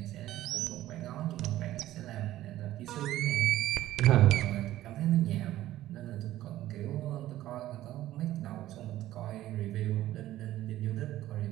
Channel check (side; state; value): left; quieter; 14.4 dB